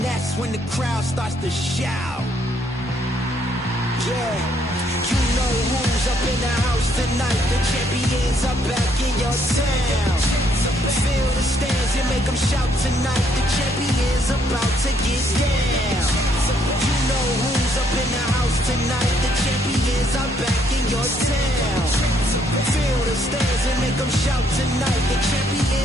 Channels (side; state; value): both; normal; correlation 0.69